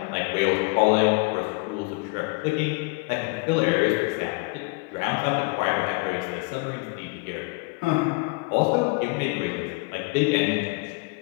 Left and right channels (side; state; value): right; quieter; 28.2 dB